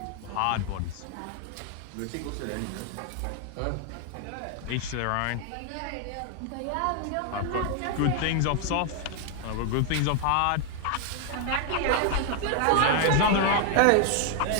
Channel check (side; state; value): both; different; correlation 0.00